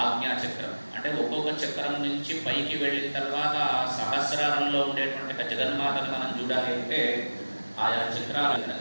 ఆజ్ఞాచక్రం. అంటే ఒక్కొక్క చక్రం నుంచి పైకి వెళ్ళిన తర్వాత సహస్రారంలో ఉండేటువంటి ఒక జగన్మాతను మనం చూడాలి అంటే ఆయా చక్రాలు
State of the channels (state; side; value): inverted; both; correlation -1.00